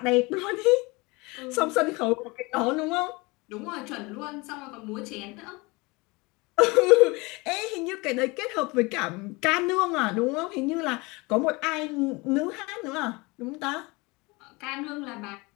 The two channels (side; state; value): right; quieter; 25.2 dB